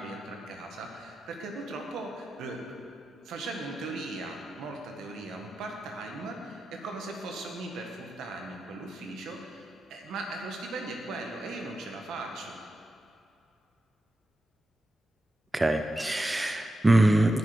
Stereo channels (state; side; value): normal; both; correlation 0.90